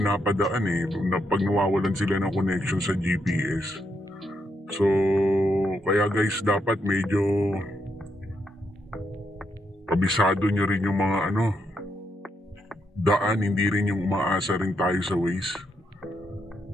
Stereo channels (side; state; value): both; normal; correlation 0.80